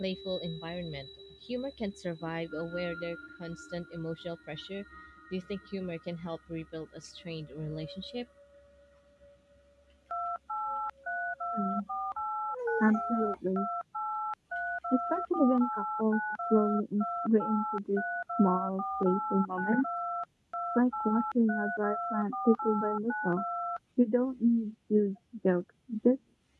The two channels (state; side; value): identical; both; correlation 1.00